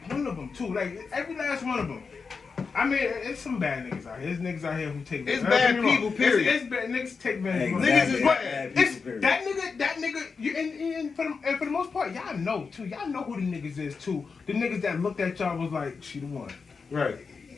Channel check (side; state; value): right; quieter; 5.1 dB